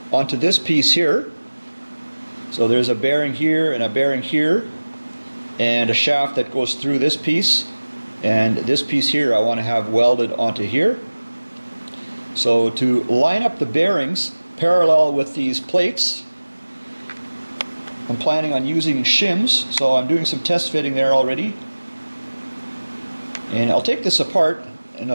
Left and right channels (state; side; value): inverted; both; correlation -1.00